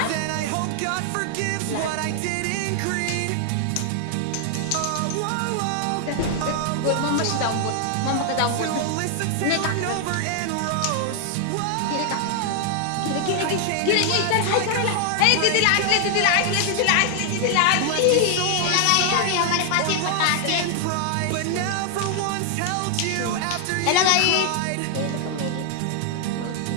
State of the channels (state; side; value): different; both; correlation 0.00